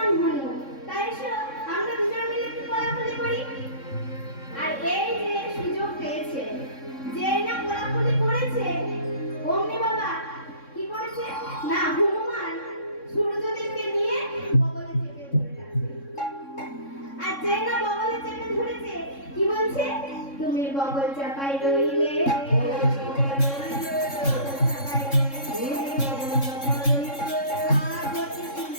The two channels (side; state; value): right; late; 3.6 ms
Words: তুমি বগল চাপাই রইলে।